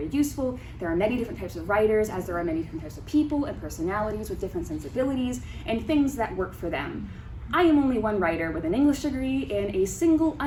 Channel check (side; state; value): both; identical; correlation 1.00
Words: useful. There are many different types of writers, as there are many different types of people and personalities with different sensibilities and things that work for them. I am only one writer with an English degree and a single